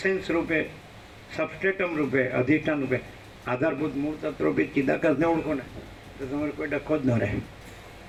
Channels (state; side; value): identical; both; correlation 1.00